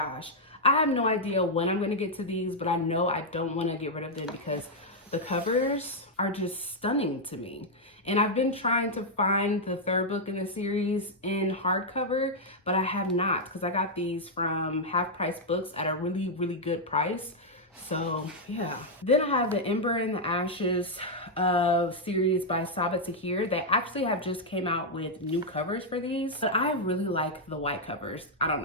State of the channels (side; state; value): both; normal; correlation -0.03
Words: I have no idea when I'm going to get to these, but I know I don't want to get rid of them because the covers are just stunning to me. And I've been trying to find the third book in the series in hardcover, but I have not, because I got these from Half Price Books at a really, really good price. So yeah. Then I have the Ember and the Ashes series by Sabaa Tahir. They actually have just came out with new covers for these, but I really like the white covers. I don't